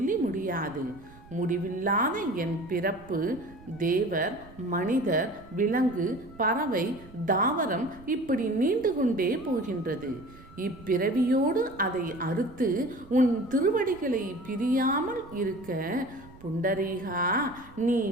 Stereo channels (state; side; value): noise; right; rumble, 21 dB below the sound